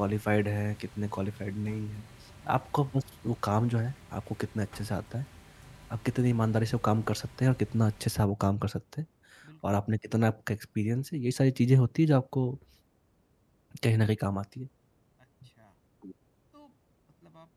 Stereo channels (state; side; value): identical; both; correlation 1.00